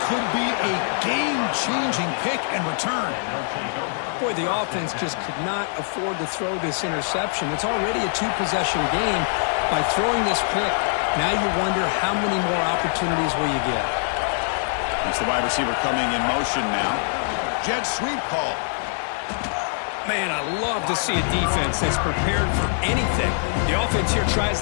could be a game-changing pick and return. Boy, the offense just could not afford to throw this interception. It's already a 2-possession game. By throwing this pick, now you wonder how many more opportunities will you get. That's the wide receiver coming in motion now. Jet sweep call. Man, I love to see a defense that's prepared for anything. The offense here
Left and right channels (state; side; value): silent; right; 63 dB below the other